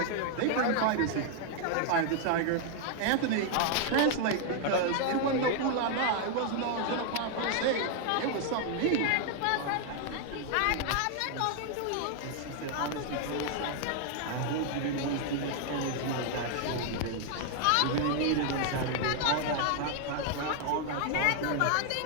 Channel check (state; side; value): different; both; correlation 0.00